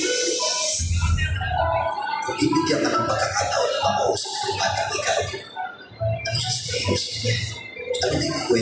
Ibigyan ka ng pagkakataon na makausap ng batang ikaw. Ano sasabihin mo sa kanya? Ano na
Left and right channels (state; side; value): identical; both; correlation 1.00